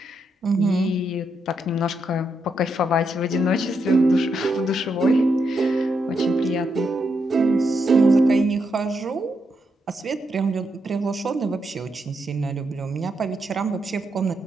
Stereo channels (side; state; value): both; normal; correlation 0.81